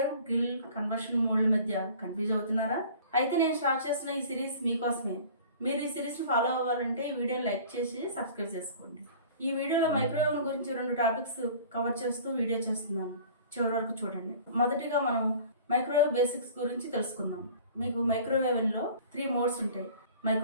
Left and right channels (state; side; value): inverted; both; correlation -0.45